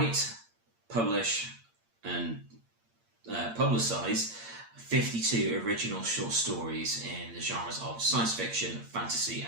publish, and publicize 52 original short stories in the genres of science fiction, fantasy,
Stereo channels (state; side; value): late; left; 8.7 ms